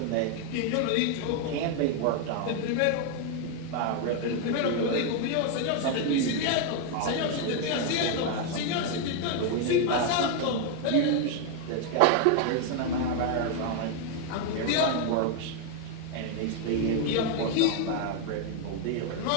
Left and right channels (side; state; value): both; different; correlation 0.01